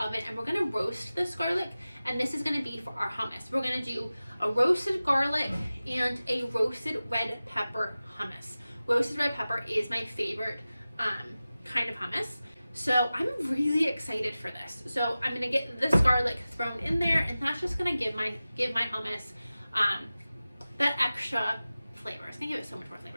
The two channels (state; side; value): inverted; both; correlation -0.96